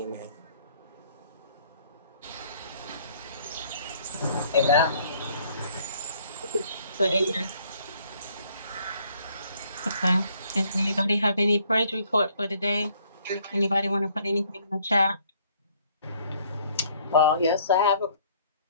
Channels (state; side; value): inverted; both; correlation -0.62